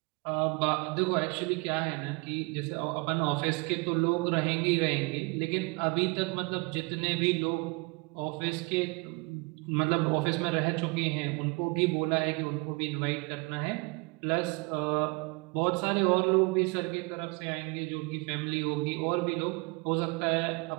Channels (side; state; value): left; quieter; 29.7 dB